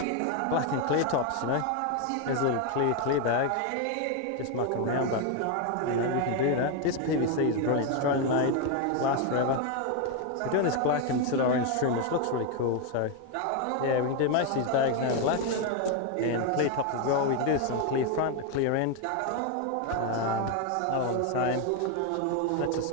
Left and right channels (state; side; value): different; both; correlation 0.01